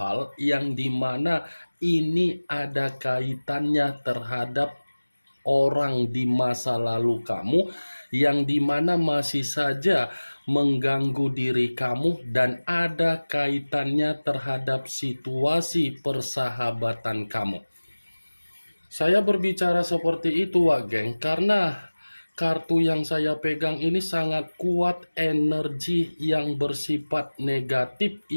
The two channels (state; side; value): inverted; both; correlation -1.00